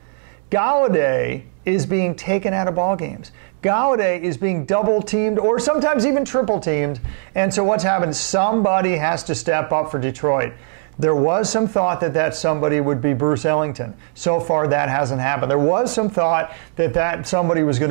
Galladay is being taken out of ball games. Galladay is being double-teamed or sometimes even triple-teamed. And so what's happened? Somebody has to step up for Detroit. There was some thought that somebody would be Bruce Ellington. So far, that hasn't happened. There was some thought that somebody was going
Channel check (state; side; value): silent; left; 66 dB below the other